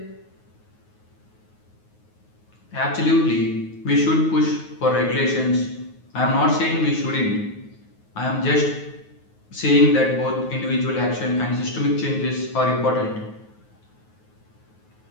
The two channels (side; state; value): right; late; 9.4 ms